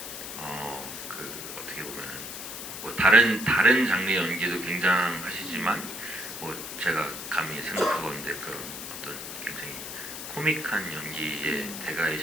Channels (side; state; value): left; noise; hiss, 8 dB below the sound